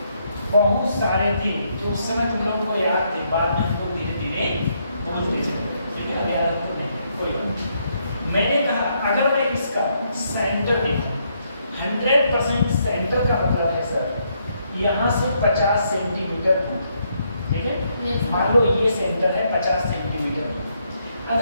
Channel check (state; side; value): inverted; both; correlation -0.75